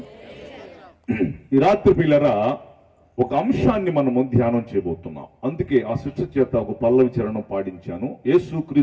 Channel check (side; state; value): both; identical; correlation 1.00